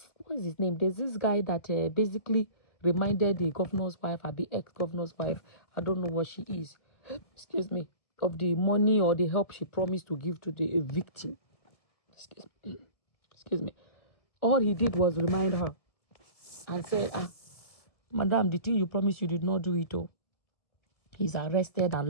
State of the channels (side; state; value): right; late; 1.7 ms